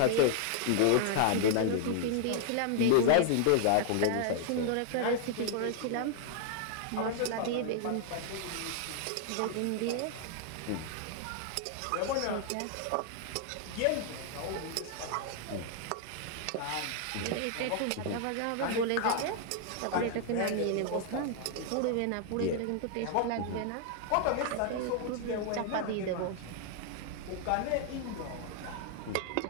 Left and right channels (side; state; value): both; different; correlation 0.00